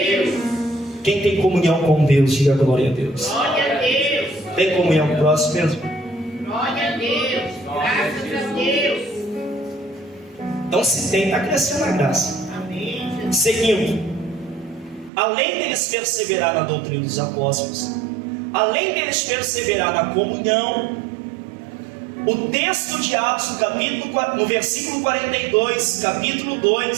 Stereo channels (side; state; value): left; drops out; at 15.1 s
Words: Quem tem comunhão com Deus, diga glória a Deus. Glória a Deus. Tem comunhão com o próximo mesmo? Glória a Deus. Graças a Deus. Então se tem, está crescendo na graça. Amém. Seguindo, além deles perseverar na doutrina dos apóstolos, além deles perseverar na comunhão, o texto de Atos, no versículo 42, capítulo